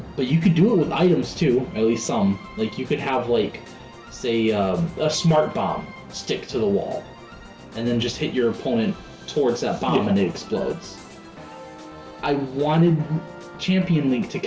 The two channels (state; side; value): identical; both; correlation 1.00